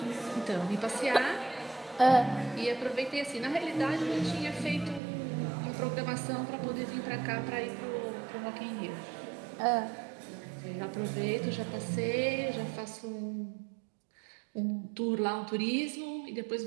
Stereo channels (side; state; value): left; drops out; at 5.0 s